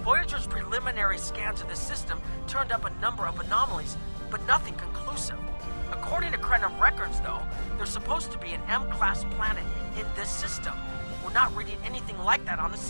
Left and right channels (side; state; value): both; inverted; correlation -1.00